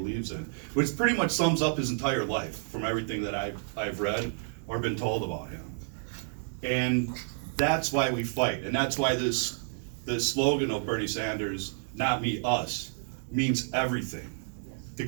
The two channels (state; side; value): silent; left; 58 dB below the other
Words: in, which pretty much sums up his entire life from everything that I've read or been told about him. And that's why we fight, and that's why this slogan of Bernie Sanders, "Not me, us," means everything.